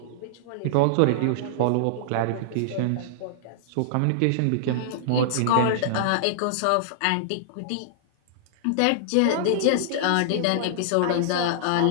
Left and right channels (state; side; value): different; both; correlation -0.01